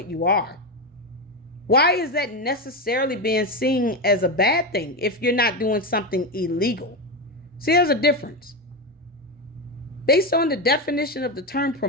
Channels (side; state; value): both; normal; correlation 0.13